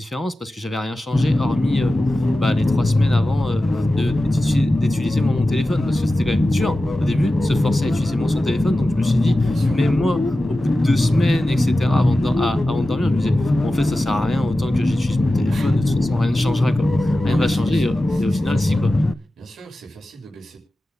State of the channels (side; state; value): both; normal; correlation 0.94